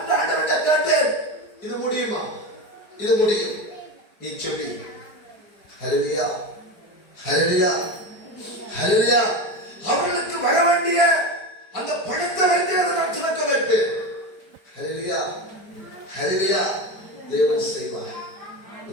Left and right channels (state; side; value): late; right; 4.9 ms